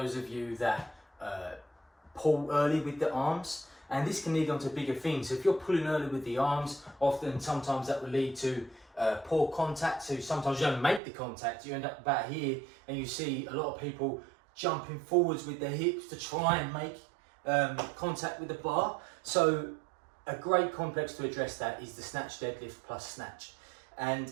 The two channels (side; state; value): left; drops out; at 11.0 s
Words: of you that pull early with the arms, and this can lead on to bigger things. So if you're pulling early with the arms, sometimes that will lead to poor contact, so sometimes you don't make the contact, you end up about here and you see a lot of people jumping forwards with their hips to try and make contact with the bar. So a great complex to address that is the snatch deadlift plus snatch, and